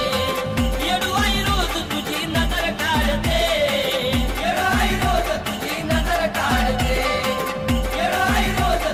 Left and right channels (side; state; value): both; identical; correlation 1.00